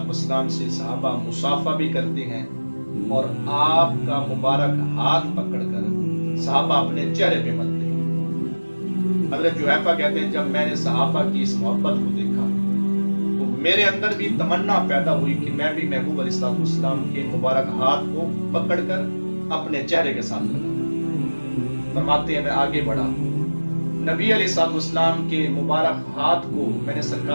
والسلام سے صحابہ مصافحہ بھی کرتے ہیں اور آپ کا مبارک ہاتھ پکڑ کر صحابہ اپنے چہرے پہ ملتے ہیں۔ حضرت جحیفہ کہتے ہیں جب میں نے صحابہ کی اس محبت کو دیکھا تو میرے اندر بھی تمنا پیدا ہوئی کہ میں بھی محبوب علیہ الصلوۃ والسلام کے مبارک ہاتھ کو پکڑ کر اپنے چہرے کے ساتھ لگا۔ فرماتے ہیں میں آگے بڑھا، نبی علیہ الصلوۃ والسلام کے مبارک ہاتھ کو میں نے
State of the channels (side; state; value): both; inverted; correlation -1.00